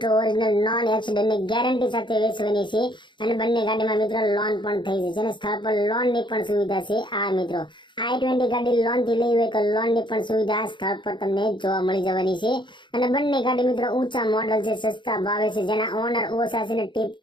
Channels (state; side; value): late; right; 0.23 ms